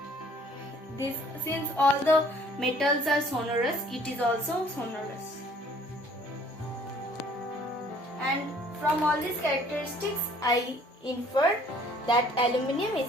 Since all the metals are sonorous, it is also sonorous. And from all these characteristics, I inferred that aluminium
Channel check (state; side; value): normal; both; correlation 0.57